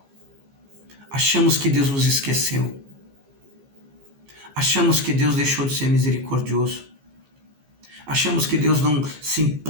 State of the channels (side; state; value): left; late; 15 ms